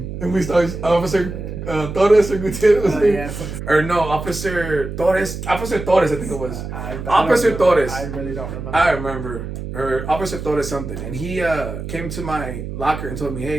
And we started, Officer Torres or Gutierrez. Yeah. Or no, Officer Torres, I think it was. Officer Torres. I really don't remember. I remember. Or Officer Torres something. And he came to my locker and told me,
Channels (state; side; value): noise; right; hum, 7 dB below the sound